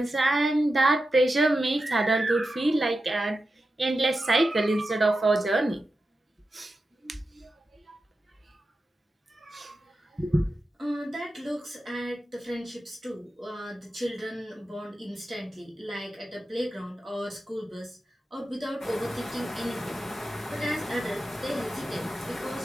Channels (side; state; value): both; normal; correlation 0.91